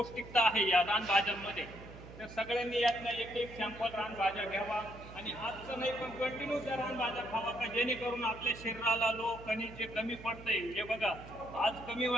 आहे या रानभाज्यांमध्ये. तर सगळ्यांनी यातनं एक सॅम्पल रानभाज्या घ्यावा आणि आजचं नाही पण कंटिन्यू त्या रानभाज्या खावा, का जेणेकरून आपल्या शरीराला खनिज जे कमी पडतंय. हे बघा, आज कमी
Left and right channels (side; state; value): right; noise; hum, 16 dB below the sound